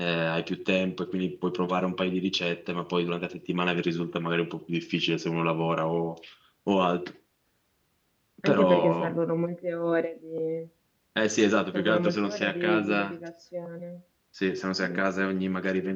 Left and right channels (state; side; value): identical; both; correlation 1.00